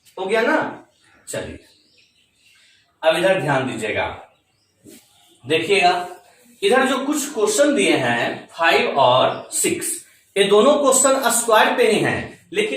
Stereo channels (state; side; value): identical; both; correlation 1.00